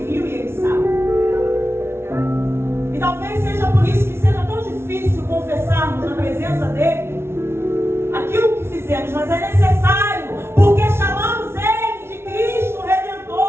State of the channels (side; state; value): left; late; 0.12 ms